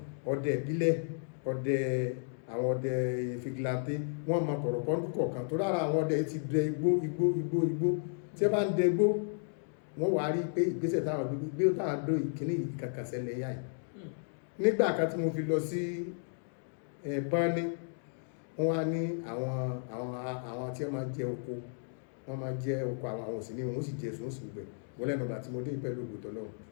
ọdẹ ìbílẹ̀ ọdẹ àwọn ọdẹ fìgìláńtì wọ́n mọ kọ̀rọ̀kọ́ lúkọ̀ọ̀kan tó lára àwọn ọdẹ ti dẹ igbó tí ẹ bá ń dẹ igbó wọ́n wá rí pé ìgbésẹ̀ táwọn gbé táwọn dó ìkíní kankan ṣẹlẹ̀ yá yìí nígbà kan tí mo fi lọ sí Báni wọ́n wá ní àwọn tí wọ́n máa jẹ oko àwọn òsì ní wọ́n sì jẹ sùn sí gbẹ̀ wọ́n lẹ́nu ọ̀gbà tí mo dé pẹ̀lú ògbòtọ́ lọ́wọ́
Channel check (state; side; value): silent; right; digital silence